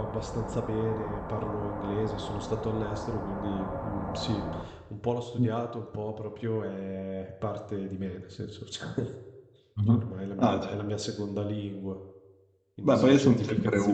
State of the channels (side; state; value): both; identical; correlation 1.00